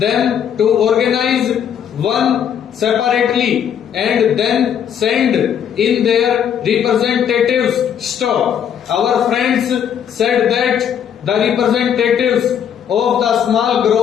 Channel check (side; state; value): right; quieter; 8.7 dB